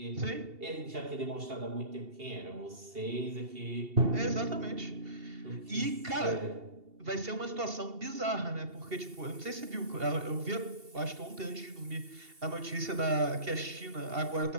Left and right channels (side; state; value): left; late; 2.7 ms